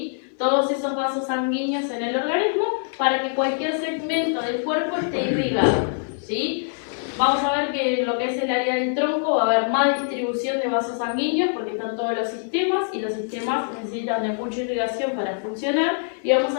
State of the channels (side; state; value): right; silent; 63 dB below the other